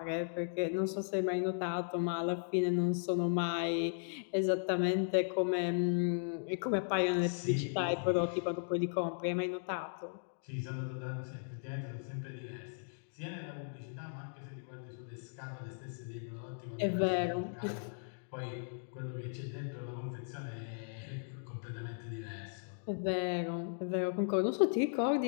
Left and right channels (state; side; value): silent; right; digital silence